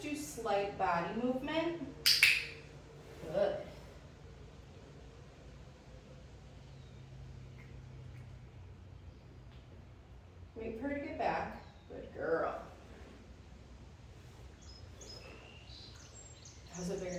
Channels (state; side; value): identical; both; correlation 1.00